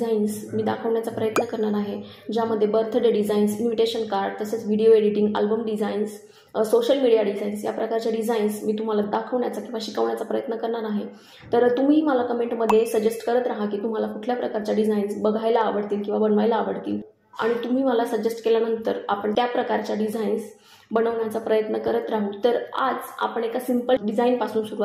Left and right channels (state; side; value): identical; both; correlation 1.00